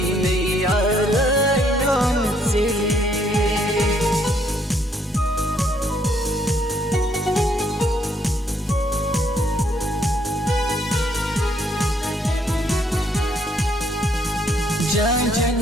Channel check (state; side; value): normal; both; correlation 0.69